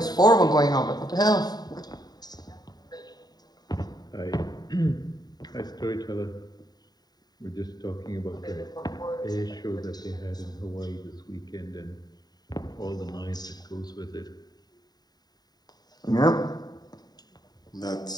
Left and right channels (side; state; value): right; late; 0.20 ms